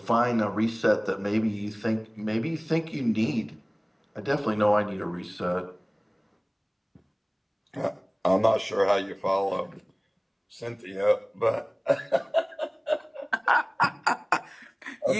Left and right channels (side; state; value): both; identical; correlation 1.00